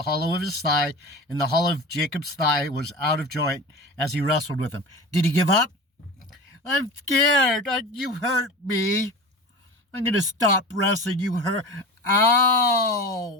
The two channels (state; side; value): normal; both; correlation 0.31